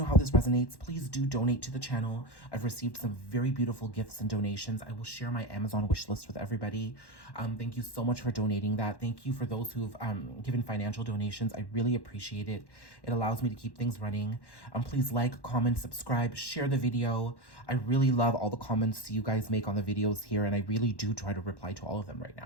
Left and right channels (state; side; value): late; right; 1.1 ms